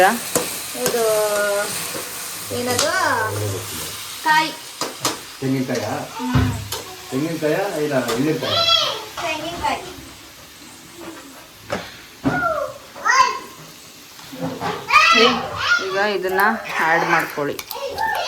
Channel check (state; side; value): identical; both; correlation 1.00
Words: ಇದು ಏನದು ಕಾಯಿ, ತೆಂಗಿನಕಾಯ ಇಲ್ಲ ಎಳ್ಳಿಕಾಯ? ತೆಂಗಿನಕಾಯಿ. ಈಗ ಇದನ್ನ ಆ್ಯಡ್ ಮಾಡ್ಕೊಳ್ಳಿ.